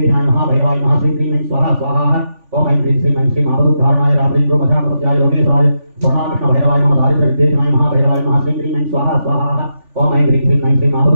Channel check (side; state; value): left; late; 3.4 ms